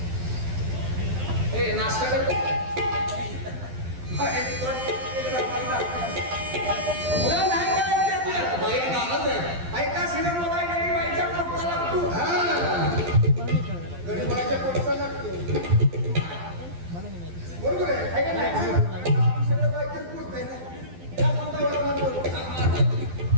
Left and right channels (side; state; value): left; late; 12 ms